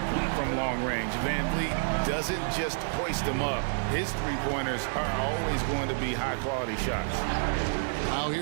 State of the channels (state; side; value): silent; left; digital silence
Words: from long range. VanVleet doesn't just hoist him up. His three-pointers are always going to be high-quality shots. Now